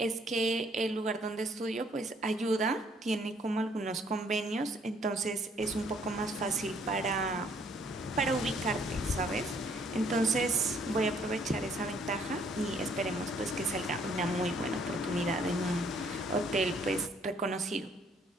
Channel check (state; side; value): normal; both; correlation 0.64